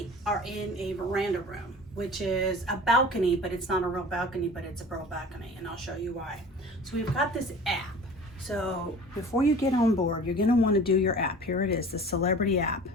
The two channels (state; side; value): normal; both; correlation 0.42